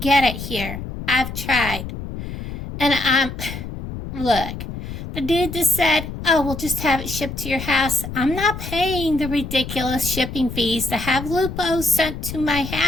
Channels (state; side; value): noise; left; rumble, 8 dB below the sound